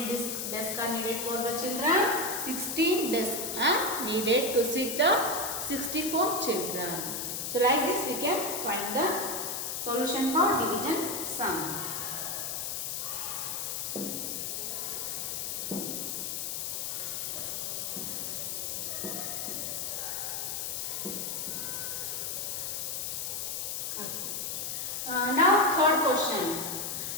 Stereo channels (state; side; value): noise; left; hiss, 3 dB below the sound